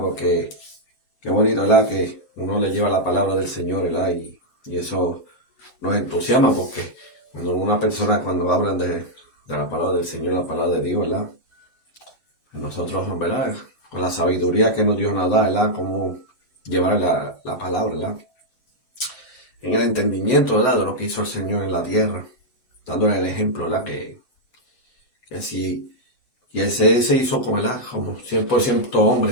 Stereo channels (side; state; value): right; late; 6.9 ms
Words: Porque qué bonito, ¿verdad?, que uno le lleva la palabra del Señor, ¿verdad? Y eso nos entusiasma, porque cuando una persona, cuando hablan de la palabra del Señor, la palabra de Dios, ¿verdad?, nosotros, ¿verdad?, con la sabiduría que nos Dios nos da, ¿verdad?, cómo llevar la palabra, ¿verdad?, en el entendimiento, ¿verdad?, de lo que hizo el Señor en la tierra, dándole el ejemplo, ¿verdad?, que si y ese se hizo como, ¿verdad?, como 100%